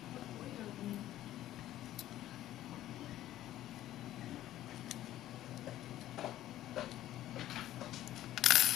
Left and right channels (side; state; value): right; quieter; 13.7 dB